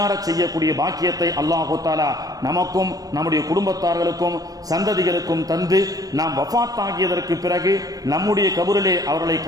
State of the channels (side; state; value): left; late; 0.18 ms